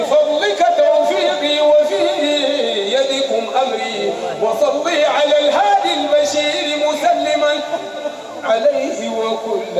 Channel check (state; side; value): identical; both; correlation 1.00